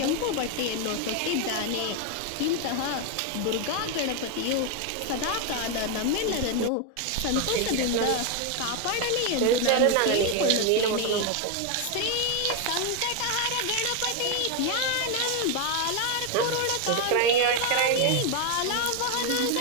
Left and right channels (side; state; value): both; different; correlation 0.01